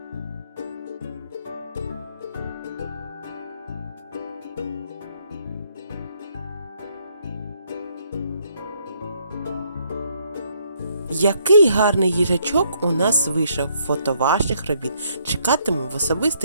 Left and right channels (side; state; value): both; inverted; correlation -0.70